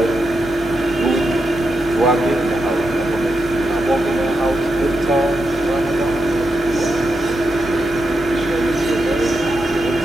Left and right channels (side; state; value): both; normal; correlation 0.85